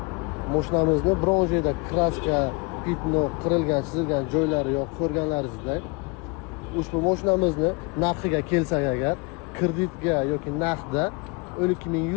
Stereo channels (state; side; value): quieter; right; 29.7 dB